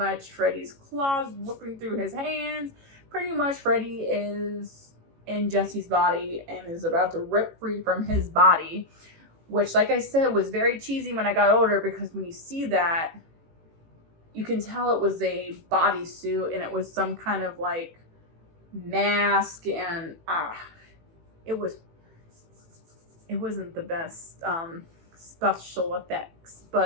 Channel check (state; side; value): late; left; 18 ms